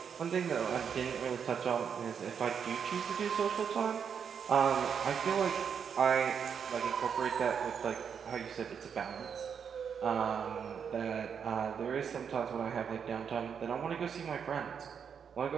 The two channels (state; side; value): quieter; left; 7.2 dB